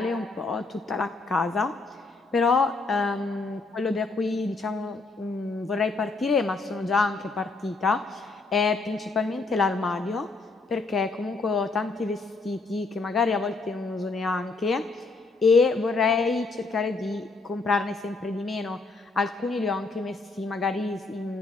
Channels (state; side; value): quieter; right; 3.7 dB